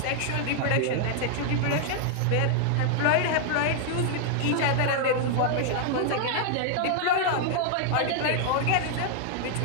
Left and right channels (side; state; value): both; different; correlation 0.00